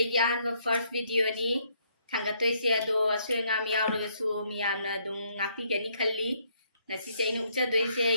ꯑꯍꯥꯟꯕ ꯐꯥꯔꯁ ꯚꯤꯗꯤꯑꯣꯅꯤ ꯊꯥꯡꯒꯠꯇꯣꯏꯁꯦ ꯑꯗꯣ ꯑꯁꯣꯏ ꯑꯉꯥꯝ ꯌꯥꯎꯔꯒꯁꯨ ꯃꯤꯌꯥꯝꯅ ꯑꯗꯨꯝ ꯉꯥꯛꯄꯤꯒꯅꯤ ꯈꯜꯂꯤ ꯉꯁꯤꯁꯦ ꯑꯩꯅ ꯎꯠꯆꯗꯣꯏꯁꯦ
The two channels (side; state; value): both; inverted; correlation -0.70